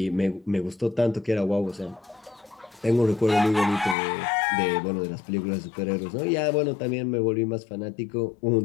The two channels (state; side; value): drops out; right; at 4.0 s